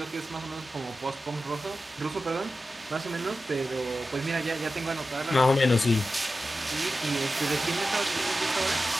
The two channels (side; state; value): both; normal; correlation 0.92